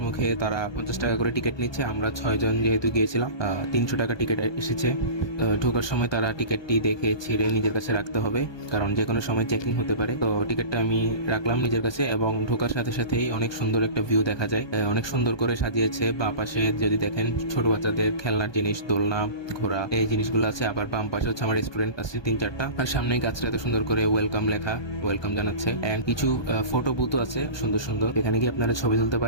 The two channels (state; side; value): late; right; 1.2 ms